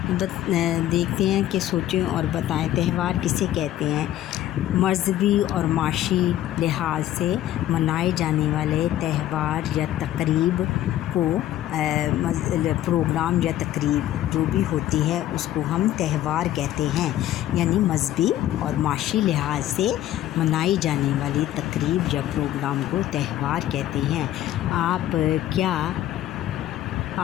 دیکھتے ہیں کہ سوچیں اور بتائیں تہوار کسے کہتے ہیں۔ مذہبی اور معاشی لحاظ سے منائے جانے والے تہوار یا تقریب کو پروگرام یا تقریب جو بھی ہوتی ہے اس کو ہم تہوار کہتے ہیں، یعنی مذہبی اور معاشی لحاظ سے منائی جانے والی تقریب یا پروگرام کو تہوار کہتے ہیں۔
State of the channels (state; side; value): quieter; right; 13.1 dB